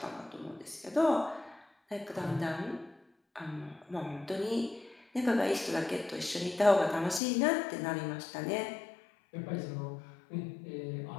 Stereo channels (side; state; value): right; drops out; at 7.2 s